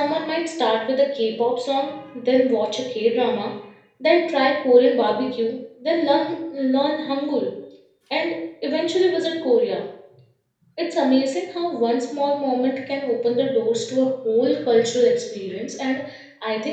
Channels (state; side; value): identical; both; correlation 1.00